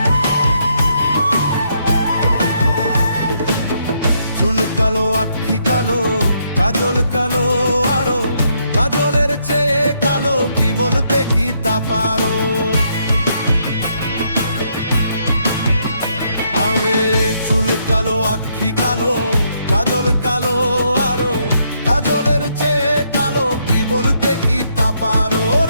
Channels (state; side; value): inverted; both; correlation -0.74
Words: চুল কালো আখি কালো কাজল কালো আরো, কাজলের চেয়ে কালো কি বলতে কি তা পারো। আরে চুল কালো আখি কালো কাজল কালো আরো, কাজলের চেয়ে কালো কি বলতে কি তা পারো।